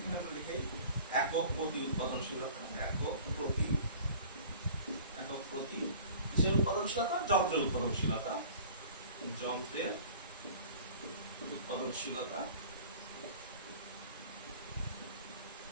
একক প্রতি উৎপাদনশীলতা, একক প্রতি কিসের উৎপাদনশীলতা? যন্ত্রের উৎপাদনশীলতা, যন্ত্রের উৎপাদনশীলতা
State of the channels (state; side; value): inverted; both; correlation -0.46